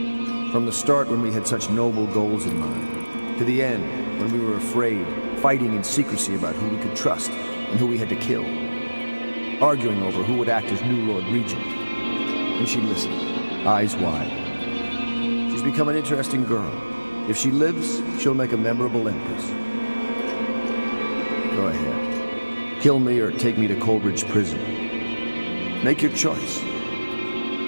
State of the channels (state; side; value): inverted; both; correlation -1.00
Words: From the start, when we had such noble goals in mind, to the end, when we were afraid, fighting in secrecy about who we could trust and who we had to kill, arguing over who would act as new Lord Regent. And she listened, eyes wide. She's become an interesting girl. If she lives, she'll make a memorable empress. Go ahead. Kill me or take me to Coldridge Prison. Make your choice.